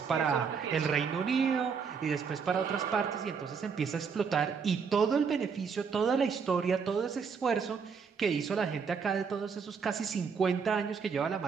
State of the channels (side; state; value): left; quieter; 6.0 dB